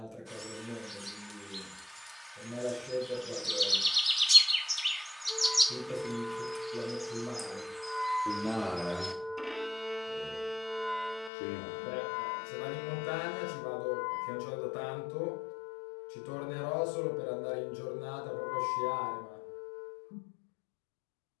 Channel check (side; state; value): right; drops out; at 11.3 s